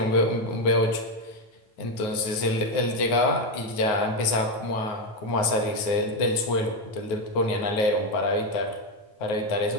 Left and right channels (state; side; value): late; right; 9.5 ms